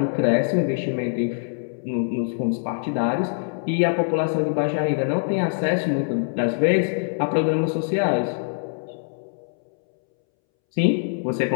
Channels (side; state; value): right; silent; 63 dB below the other